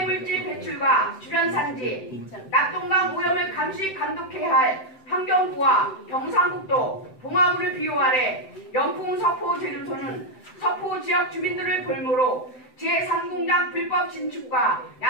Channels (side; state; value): right; late; 7.8 ms